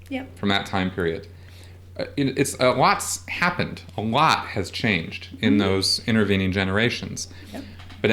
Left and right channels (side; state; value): both; identical; correlation 1.00